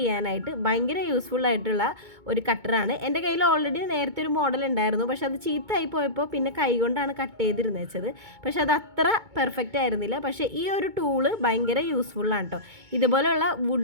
ഭയങ്കര യൂസ്ഫുൾ ആയിട്ടുള്ള ഒരു കട്ടറാണ്. എൻ്റെ കയ്യിൽ ഓൾറെഡി നേരത്തെ ഒരു മോഡൽ ഉണ്ടായിരുന്നു. പക്ഷെ അത് ചീത്തയായി പോയപ്പോൾ പിന്നെ കൈ കൊണ്ടാണ് കട്ട് ചെയ്തിരുന്നത് വെച്ചത്. പക്ഷെ അത് അത്ര പെർഫെക്റ്റ് ആയിരുന്നില്ല. പക്ഷേ ഈ ഒരു ടൂള് ഭയങ്കര യൂസ്ഫുള്ളാണ് കേട്ടോ. ഇതുപോലെയുള്ള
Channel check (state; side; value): late; left; 2.2 ms